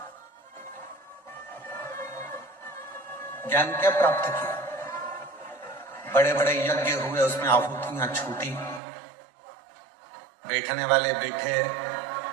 ज्ञान क्या प्राप्त किया? बड़े बड़े यज्ञ हुए, उसमें आहुतियां छूटी, बैठने वाले बैठे,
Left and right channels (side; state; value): left; drops out; at 8.8 s